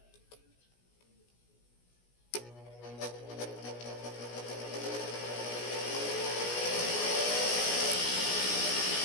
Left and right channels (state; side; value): late; right; 17 ms